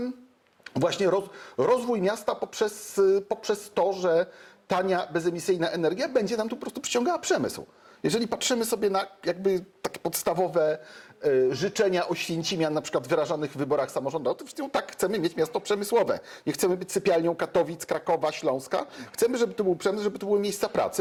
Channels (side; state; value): both; identical; correlation 1.00